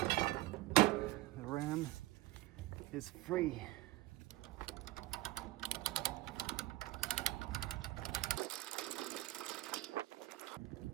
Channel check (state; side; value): quieter; left; 18.3 dB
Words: the ram is free.